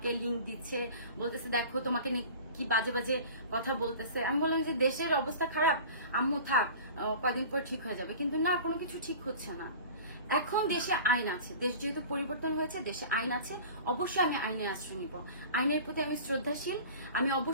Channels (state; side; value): inverted; both; correlation -0.40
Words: লিংক দিচ্ছে, বলতেছে দেখো তোমাকে নিয়ে কি বাজে বাজে কথা বলতেছে। আমি বললাম যে দেশের অবস্থা খারাপ, আম্মু থাক, কয়দিন পর ঠিক হয়ে যাবে, কিন্তু না, কোনো কিছু ঠিক হচ্ছে না। এখন দেশে আইন আছে, দেশ যেহেতু পরিবর্তন হয়েছে, দেশে আইন আছে, অবশ্যই আমি আইনে আশ্রয় নিব। আইনের প্রতি আমি শ্রদ্ধাশীল, আমি